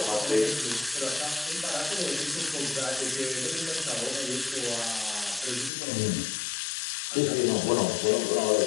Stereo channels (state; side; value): drops out; right; at 5.7 s